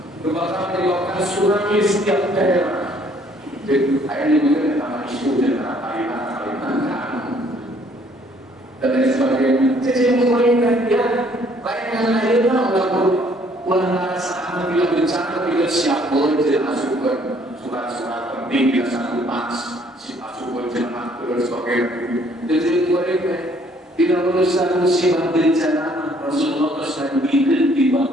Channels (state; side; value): normal; both; correlation 0.62